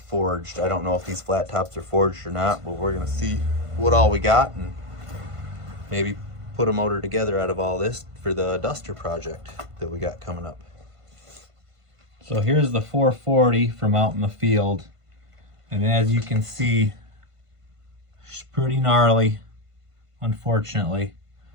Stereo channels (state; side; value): late; left; 1.5 ms